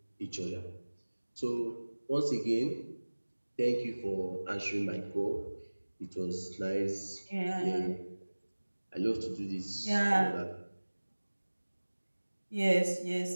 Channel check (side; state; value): both; inverted; correlation -1.00